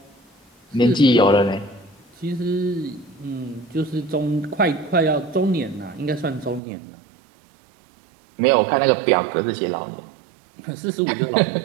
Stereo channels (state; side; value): drops out; left; at 6.6 s